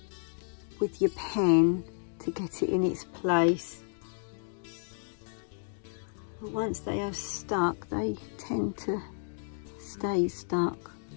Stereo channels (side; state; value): right; silent; digital silence